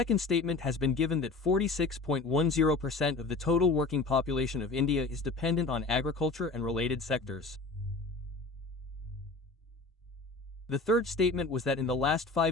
statement has been given that 46.10% of the total working population of India is dependent on agriculture and related sectors. The third statement was that in the last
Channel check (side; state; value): right; quieter; 3.7 dB